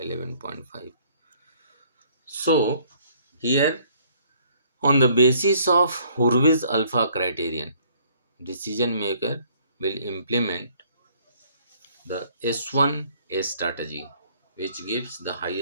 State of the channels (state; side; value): inverted; both; correlation -0.61